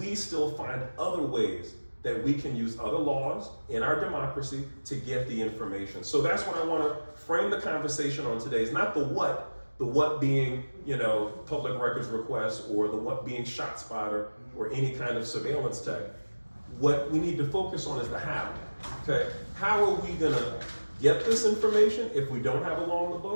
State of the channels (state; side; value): inverted; both; correlation -1.00